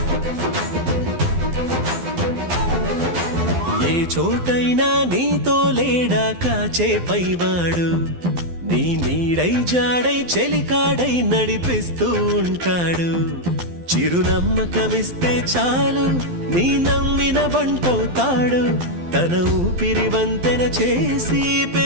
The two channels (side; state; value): left; late; 12 ms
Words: ఏ చోటైనా నీతో లేడా కాచే పైవాడు, నీ నీడై జాడై చెలికాడై నడిపిస్తూ ఉంటాడు. చిరునమ్మకమిస్తే చాలు నీ నమ్మిన బంటవుతాడు. తన ఊపిరి వంతెన చేసి